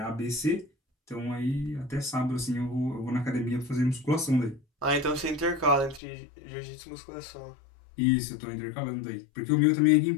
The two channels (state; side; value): drops out; right; at 6.0 s